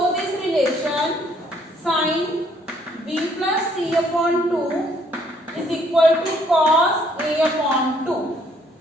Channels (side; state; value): both; normal; correlation 0.65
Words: this relation. Sin B plus C upon 2 is equal to cos A upon 2.